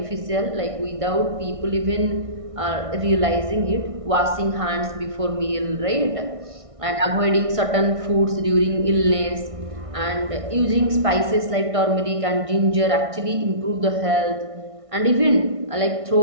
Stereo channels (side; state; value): left; late; 1.6 ms